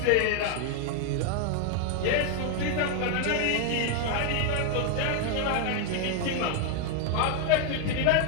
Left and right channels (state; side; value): different; both; correlation 0.01